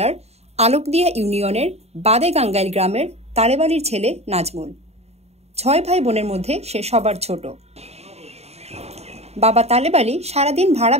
আলোকদিয়া ইউনিয়নের বাদে গাঙ্গাইল গ্রামের তালেবালির ছেলে নাজমুল। ৬ ভাই বোনের মধ্যে সে সবার ছোট। বাবা তালেবালি সারাদিন ভাড়া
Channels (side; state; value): left; late; 0.31 ms